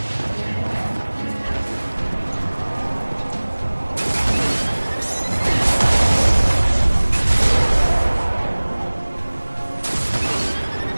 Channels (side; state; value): both; inverted; correlation -1.00